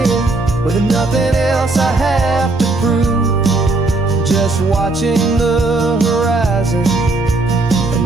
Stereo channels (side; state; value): left; quieter; 3.3 dB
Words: with nothing else I have to prove, just watching the horizon